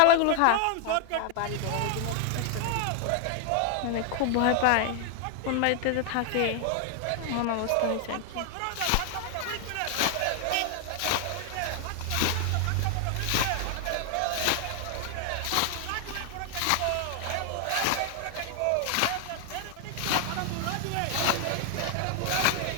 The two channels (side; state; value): both; different; correlation 0.00